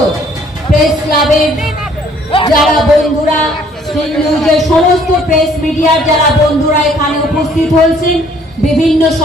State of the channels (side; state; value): both; normal; correlation 0.60